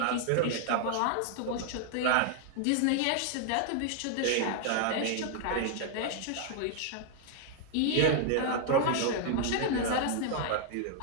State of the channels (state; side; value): different; both; correlation 0.00